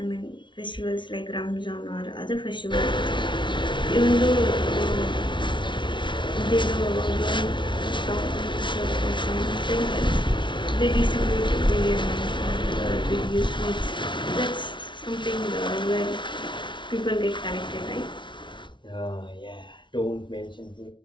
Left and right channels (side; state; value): right; late; 0.24 ms